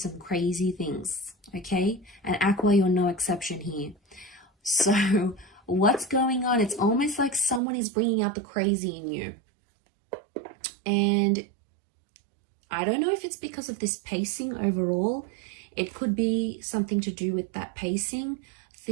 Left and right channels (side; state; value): left; drops out; at 7.6 s